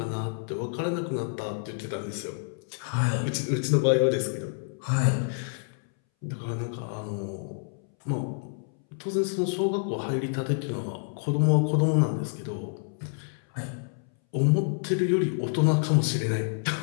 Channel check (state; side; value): silent; right; 59 dB below the other